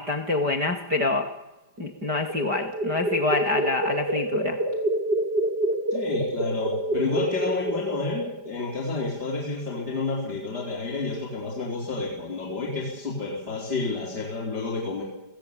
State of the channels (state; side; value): late; left; 5.0 ms